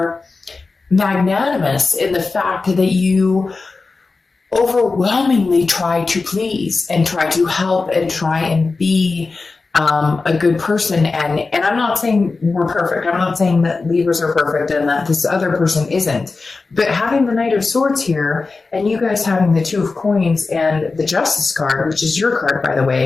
magnanimous in the fact that you overwhelmingly try to please and try to help and try and be a good person. And I'm not saying we're perfect. I'm not saying that Libras are perfect and that this other person isn't. But having the Knight of Swords here, and you guys having the Two of Coins and the Justice card, which is your card, by the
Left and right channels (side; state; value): right; quieter; 4.0 dB